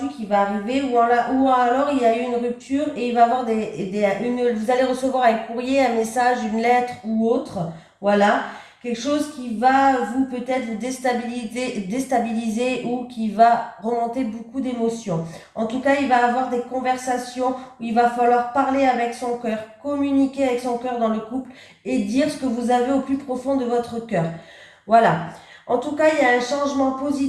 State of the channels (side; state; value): both; identical; correlation 1.00